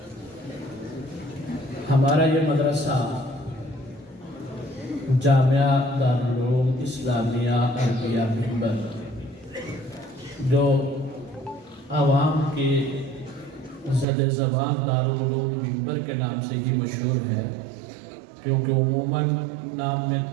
ہمارا یہ مدرسہ جامعہ دارالعلوم اسلامیہ عربیہ ممبر جو عوام کی زد زبان دارالعلوم ممبر کے نام سے ہی مشہور ہے، کیونکہ عموماً نام میں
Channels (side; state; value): left; drops out; at 14.1 s